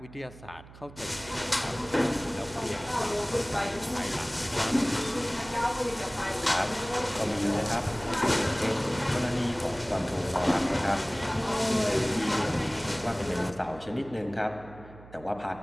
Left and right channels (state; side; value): noise; right; hum, 19 dB below the sound